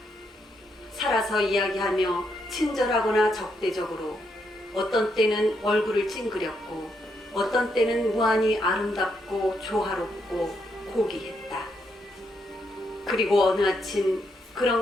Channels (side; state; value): both; normal; correlation 0.78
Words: 살아서 이야기하며 친절하거나 적대적으로, 어떤 때는 얼굴을 찡그렸고 어떤 때는 무한히 아름답고 조화롭고 고귀했다. 그리고 어느 아침